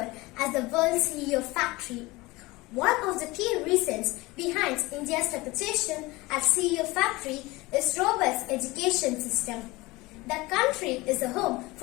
as the world CEO factory. One of the key reasons behind India's reputation as CEO factory is robust education system. The country is a home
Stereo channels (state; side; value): quieter; right; 21.8 dB